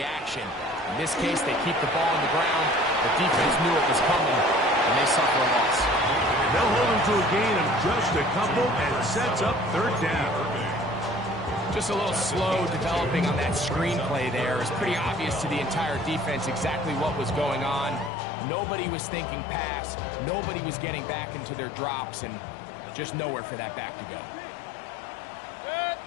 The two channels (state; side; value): drops out; right; at 18.1 s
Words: action. In this case, they keep the ball on the ground. The defense knew it was coming, and they suffer a loss. They'll hold him to a gain of just a couple and sets up third down. Just a little slow developing on that screenplay there. It's pretty obvious to the entire defense exactly what was going on. Nobody was thinking pass. Nobody was getting back into their drops, and just nowhere for that back to go.